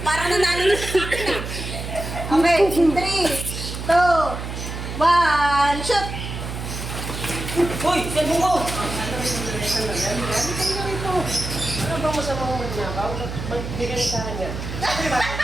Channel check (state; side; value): noise; right; hum, 7 dB below the sound